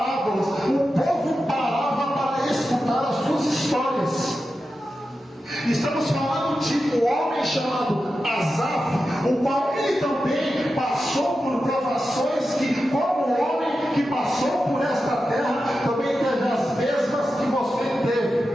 o povo parava para escutar as suas histórias. Estamos falando de um homem chamado Asaf, o qual ele também passou por provações que, como homem que passou por esta terra, também teve as mesmas que você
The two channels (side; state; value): both; normal; correlation 0.91